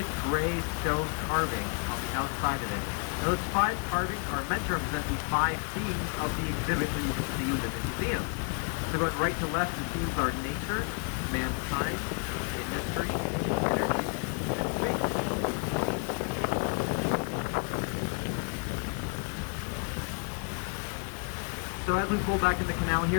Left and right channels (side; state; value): right; quieter; 35.2 dB